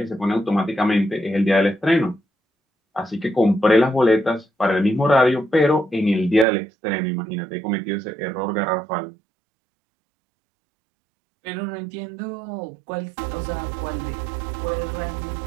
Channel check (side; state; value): left; drops out; at 6.5 s